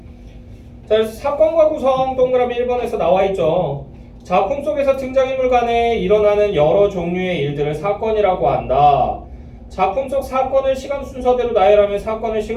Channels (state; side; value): identical; both; correlation 1.00